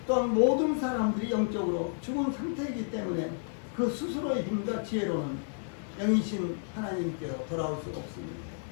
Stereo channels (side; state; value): right; silent; 57 dB below the other